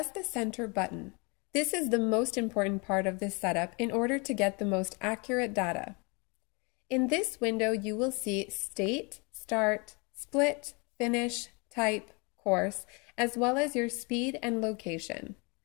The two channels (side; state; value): right; quieter; 30.8 dB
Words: the center button. This is the most important part of this setup in order to get the most accurate data. In this window, you will see State, Start, Split, Finish, Type, Course, as well as your speed and location.